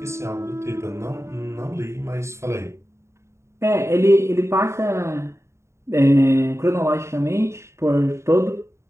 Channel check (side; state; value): left; late; 0.13 ms